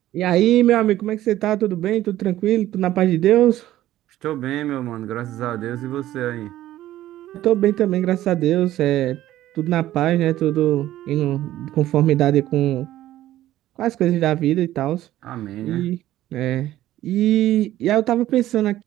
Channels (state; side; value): quieter; left; 14.1 dB